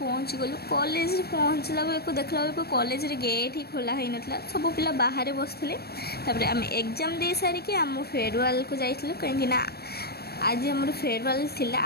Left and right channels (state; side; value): late; right; 0.46 ms